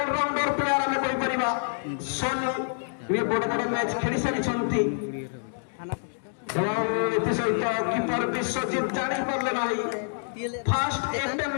प्लेयर हमें कहि परिबा सोनू ये बड़ बड़ मैच खेली सारिचंती कीपर विश्वजीत जानी पारे ना फास्ट एटेम्प्ट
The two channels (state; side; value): silent; right; digital silence